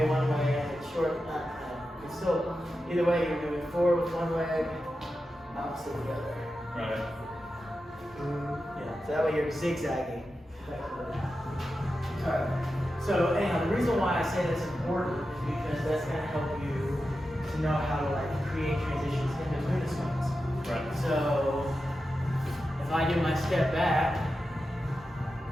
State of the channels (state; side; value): normal; both; correlation 0.91